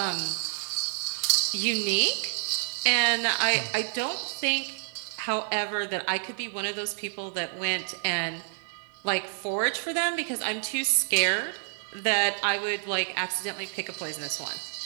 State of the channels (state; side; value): silent; left; 59 dB below the other